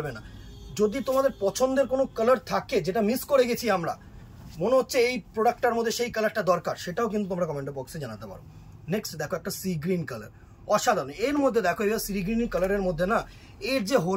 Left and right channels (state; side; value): identical; both; correlation 1.00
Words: না। যদি তোমাদের পছন্দের কোনো কালার থাকে যেটা মিস করে গেছি আমরা, মনে হচ্ছে এই প্রোডাক্টটার মধ্যে সেই কালারটা দরকার, সেটাও কিন্তু তোমরা কমেন্ট বক্সে জানাতে পারো। নেক্সট দেখো একটা সি গ্রিন কালার, অসাধারণ। এর মধ্যে দেখো এবার সি গ্রিন কালারের মধ্যে না এর যে